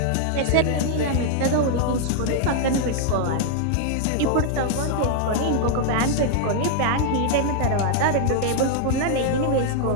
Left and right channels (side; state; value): both; different; correlation 0.00